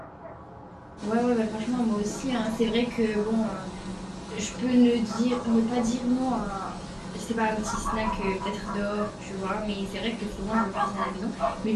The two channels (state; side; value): identical; both; correlation 1.00